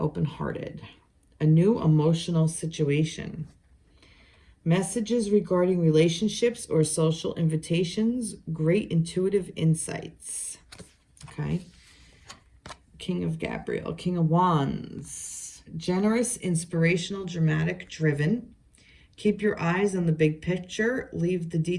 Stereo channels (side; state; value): both; identical; correlation 1.00